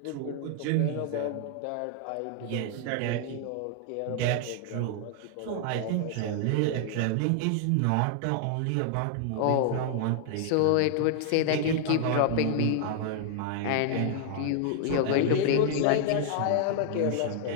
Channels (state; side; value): different; both; correlation 0.00